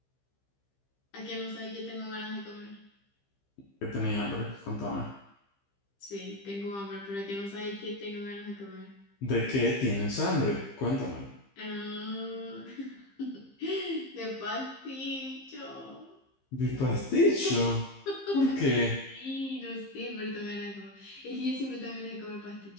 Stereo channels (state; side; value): late; right; 15 ms